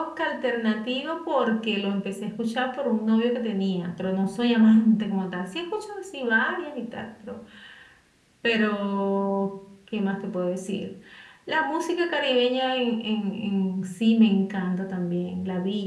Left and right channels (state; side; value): identical; both; correlation 1.00